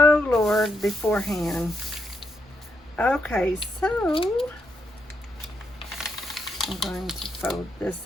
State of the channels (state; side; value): normal; both; correlation 0.79